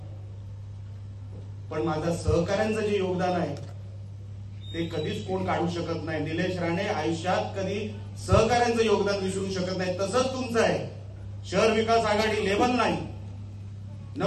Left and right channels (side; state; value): both; identical; correlation 1.00